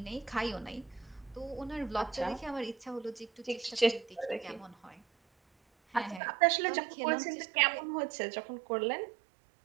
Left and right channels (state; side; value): drops out; left; at 6.2 s